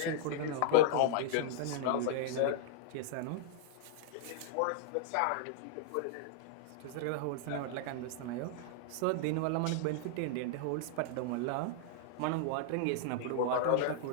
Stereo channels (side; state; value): both; different; correlation -0.01